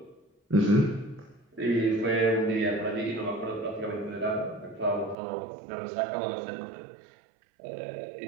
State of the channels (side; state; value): left; drops out; at 5.2 s